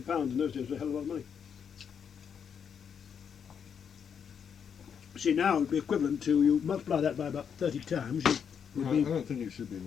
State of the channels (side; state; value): right; quieter; 7.4 dB